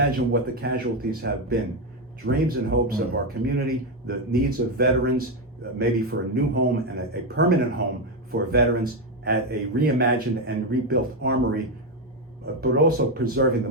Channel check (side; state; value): both; normal; correlation 0.08